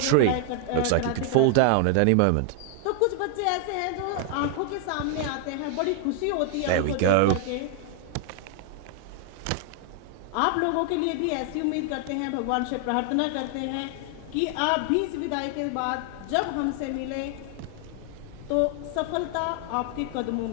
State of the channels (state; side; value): different; both; correlation 0.00